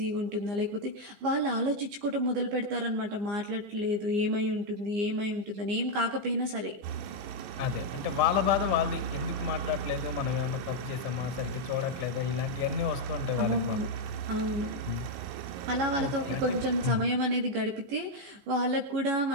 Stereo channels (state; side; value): late; left; 15 ms